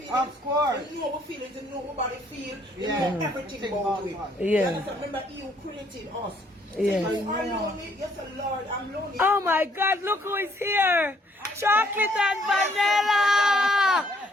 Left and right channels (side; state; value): both; normal; correlation 0.65